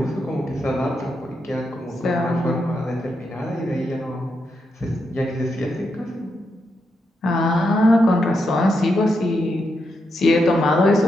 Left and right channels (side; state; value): both; normal; correlation 0.83